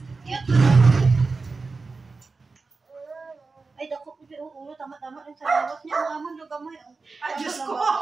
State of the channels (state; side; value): quieter; left; 4.1 dB